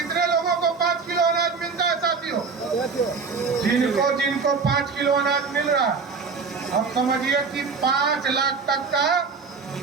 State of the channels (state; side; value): quieter; left; 5.0 dB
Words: लोगों को 5 किलो अनाज मिलता है साथियों? जिनको 5 किलो अनाज मिल रहा है, अब समझिए कि 5 लाख तक का